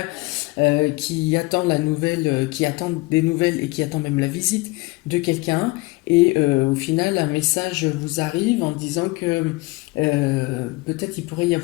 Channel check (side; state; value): right; quieter; 23.4 dB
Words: qui attend la nouvelle, qui attend des nouvelles et qui attend même la visite de quelqu'un. Et au final, un message vous arrive en disant que peut-être il pourrait y